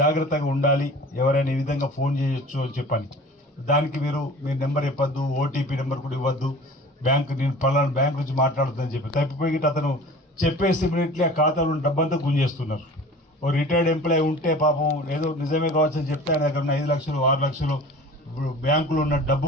ఉండాలి, ఎవరైనా ఈ విధంగా ఫోన్ చేయొచ్చు అని చెప్పని. దానికి మీరు మీ నెంబర్ ఇవ్వద్దు, ఓటీపీ నెంబర్ కూడా ఇవ్వద్దు, నేను పలానా బ్యాంక్ నుంచి మాట్లాడుతుందని చెప్పి తప్పిపోయి అతను చెప్పేసి ఇమీడియట్లీ ఆ ఖాతాలో డబ్బంతా గుంజేస్తున్నారు. ఓ రిటైర్డ్ ఎంప్లాయీ ఉంటే పాపం ఏదో నిజమే కావచ్చు అని చెప్తే ఆయన దగ్గర ఉన్న 5 లక్షలు 6 లక్షలు బ్యాంకులో ఉన్న డబ్బు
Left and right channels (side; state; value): both; normal; correlation 0.42